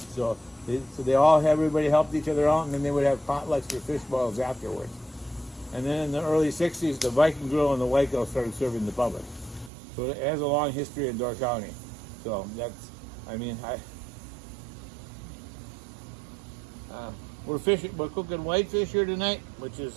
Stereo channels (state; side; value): drops out; left; at 9.7 s